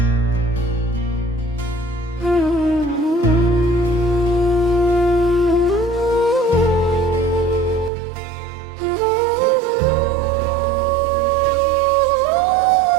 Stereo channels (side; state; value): left; drops out; at 7.9 s